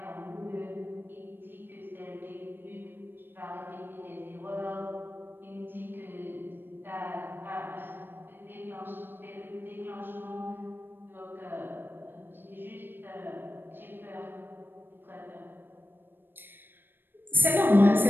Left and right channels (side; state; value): left; late; 0.097 ms